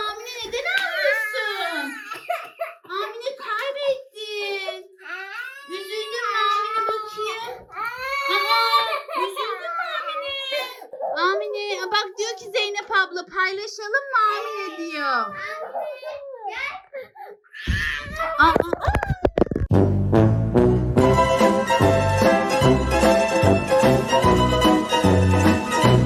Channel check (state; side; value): identical; both; correlation 1.00